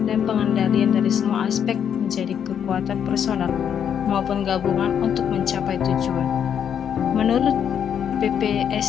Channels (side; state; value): right; quieter; 8.5 dB